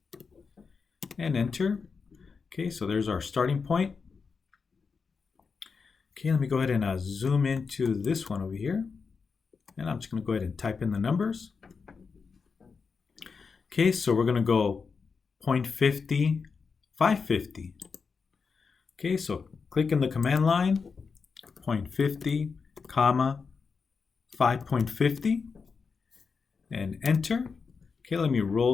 And enter. Okay, so there's our starting point. Okay, let me go ahead and zoom into this one over here. And I'm just going to go ahead and type in the numbers. Okay, so we're going to go 0.50, 550. Okay, so click in the command line, 0.50, comma 5.50. And enter. Okay, let me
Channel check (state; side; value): quieter; right; 5.2 dB